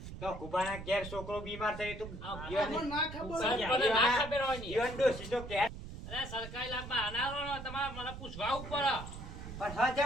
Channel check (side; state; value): right; noise; rumble, 10 dB below the sound